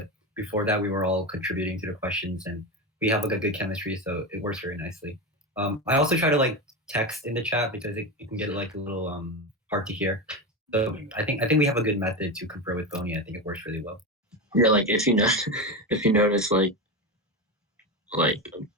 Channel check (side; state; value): both; normal; correlation 0.18